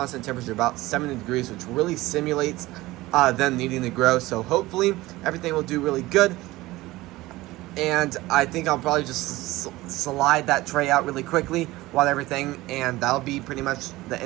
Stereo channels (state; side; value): quieter; left; 18.7 dB